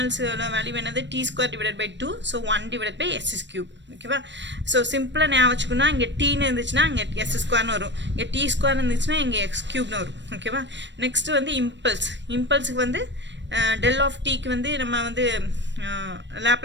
வேல்யூ என்னது T square divided by 2, so 1 divided by S cube ஓகேவா. ஸோ சிம்பிளாக ஞாபகம் வச்சுக்கணும், இங்கே டீன்னு இருந்துச்சுன்னா இங்கே எஸ் ஸ்கொயர்னு வரும், இங்கே டி ஸ்கொயர் இருந்துச்சுன்னா இங்கே எக்ஸ் கியூப்னு வரும் ஓகேவா. நெக்ஸ்ட் வந்து இம்பல்ஸுக்கு வந்து டெல் ஆஃப் டீக்கு வந்து நம்ம வந்து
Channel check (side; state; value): left; late; 0.53 ms